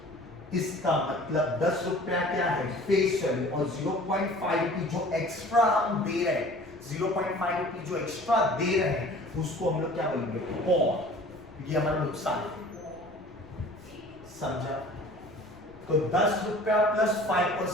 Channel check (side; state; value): left; noise; rumble, 24 dB below the sound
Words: इसका मतलब 10 रुपया क्या है फेस वैल्यू और 0.5 रुपी जो एक्स्ट्रा हम दे रहे हैं, 0.5 रुपी जो एक्स्ट्रा दे रहे हैं उसको हम लोग क्या बोलेंगे, और ये हमारा नुकसान है. समझा? तो 10 रुपया प्लस